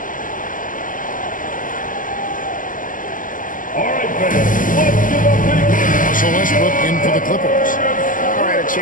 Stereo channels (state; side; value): late; right; 0.38 ms